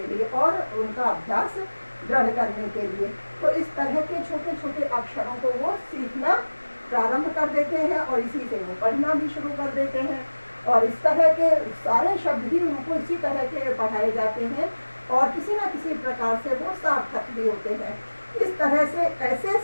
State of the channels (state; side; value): inverted; both; correlation -1.00